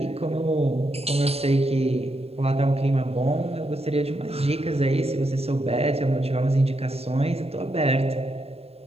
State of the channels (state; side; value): late; left; 0.29 ms